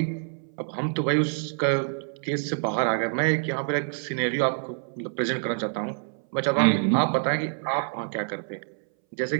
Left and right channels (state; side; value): silent; left; 61 dB below the other